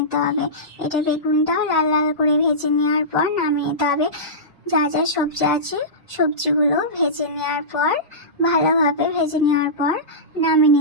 হবে। এটা বেগুনটাও লাল লাল করে ভেজে নেওয়ার পর নামিয়ে নিতে হবে। যা যা সবজি আছে সবজিগুলো ভেজে নেওয়ার পর ভালোভাবে ভেজে নেওয়ার পর নামিয়ে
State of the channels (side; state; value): both; normal; correlation -0.18